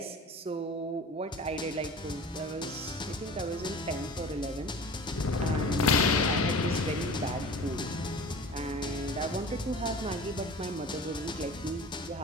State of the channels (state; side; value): normal; both; correlation 0.39